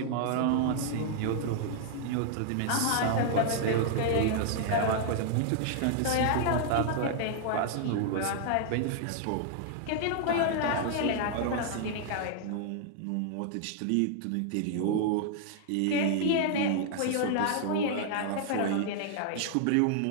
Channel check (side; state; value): both; different; correlation -0.01